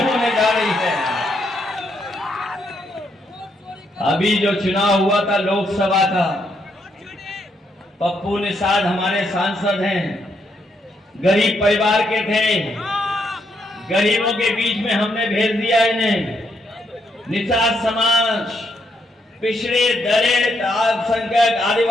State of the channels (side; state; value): both; normal; correlation 0.77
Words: जा रही है। अभी जो चुनाव हुआ था लोकसभा का, पप्पू निषाद हमारे सांसद हैं, गरीब परिवार के थे, गरीबों के बीच में हमने भेज दिया इन्हें। निषाद समाज, पिछड़े दलित, अल्पसंख्यक,